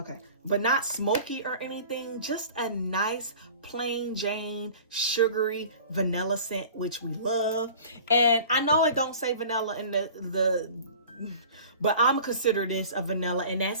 but not smoky or anything, just a nice plain Jane sugary vanilla scent, which we love. And I know it don't say vanilla in the but I'm gonna consider this a vanilla, and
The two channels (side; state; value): both; inverted; correlation -0.43